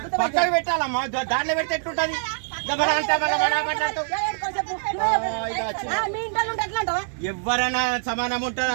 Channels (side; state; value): left; silent; digital silence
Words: పక్కకు పెట్టాలమ్మా దాంట్లో పెడితే ఎట్లుంటది ఎవరైనా సమానం ఉంటది